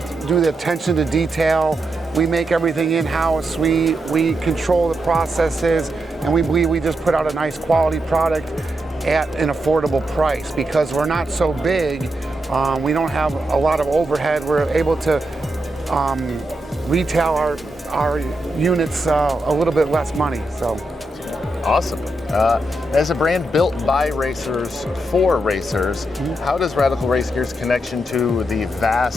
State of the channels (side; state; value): both; normal; correlation 0.84